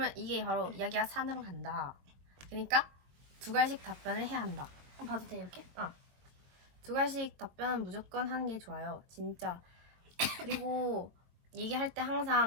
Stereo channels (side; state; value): left; late; 22 ms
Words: 이게 바로 이야기가 산으로 간다. 그러니까 두 갈씩 답변을 해야 한다. 봐도 돼 이렇게? 두 갈씩 답변은 무조건 하는 게 좋아요. 진짜. 그리고 얘기할 때